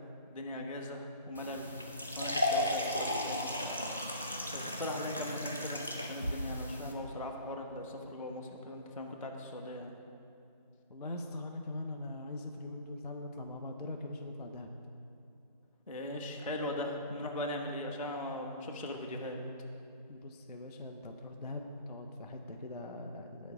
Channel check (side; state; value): both; inverted; correlation -0.46